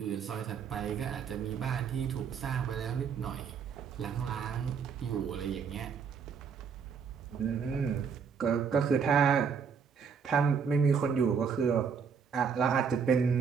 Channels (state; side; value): quieter; left; 6.4 dB